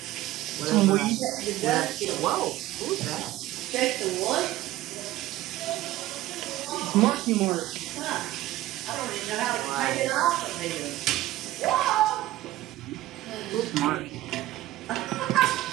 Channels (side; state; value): left; quieter; 15.5 dB